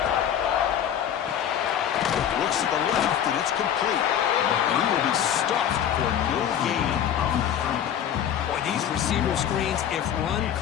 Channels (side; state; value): right; quieter; 9.6 dB